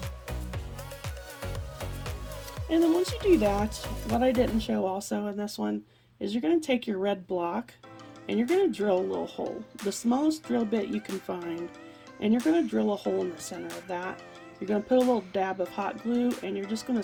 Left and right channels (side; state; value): both; identical; correlation 1.00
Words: And then once you do that, what I didn't show also in this one is you're going to take your red block and you're going to drill a little hole, the smallest drill bit you can find, and you're going to drill a hole in the center of that. You're going to put a little dab of hot glue, and you're just going to